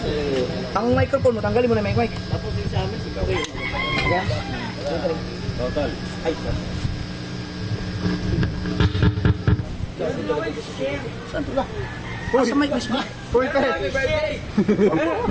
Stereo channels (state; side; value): identical; both; correlation 1.00